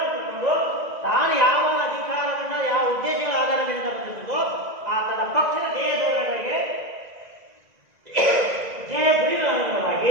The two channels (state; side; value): late; left; 2.0 ms